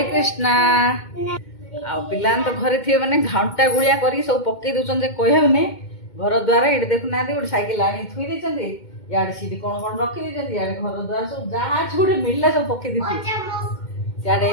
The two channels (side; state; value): right; late; 2.2 ms